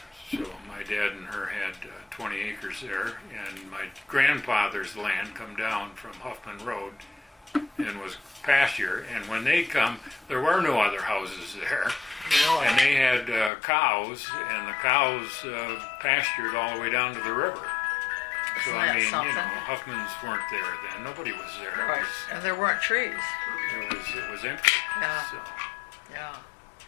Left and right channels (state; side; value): drops out; right; at 13.5 s